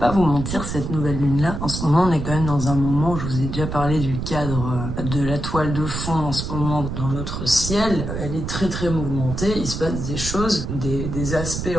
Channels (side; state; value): right; noise; rumble, 5 dB below the sound